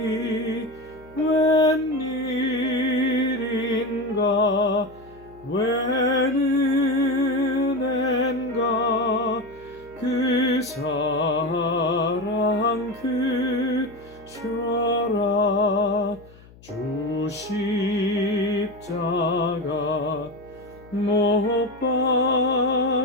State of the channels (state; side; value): noise; left; hum, 23 dB below the sound